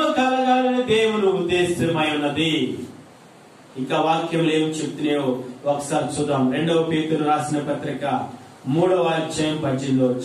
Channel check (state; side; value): identical; both; correlation 1.00